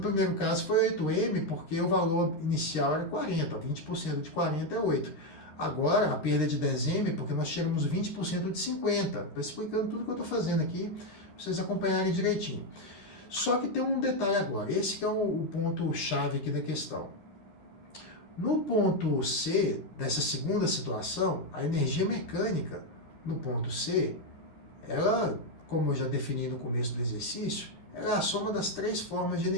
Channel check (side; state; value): right; late; 13 ms